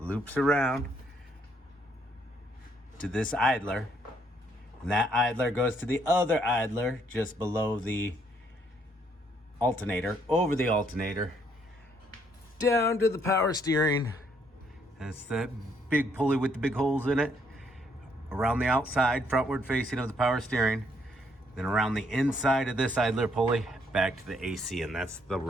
around to this idler, and that idler goes to the other idler just below the alternator, over the alternator, down to the power steering. That's that big pulley with the big holes in it, around the outside, frontward facing of the power steering, then around the inside of this idler pulley, back to the AC, and that's the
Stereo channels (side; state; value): both; normal; correlation 0.70